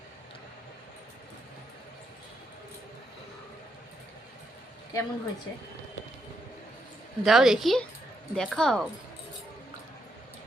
কেমন হয়েছে দাও দেখি, দেখাও।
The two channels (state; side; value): normal; both; correlation 0.79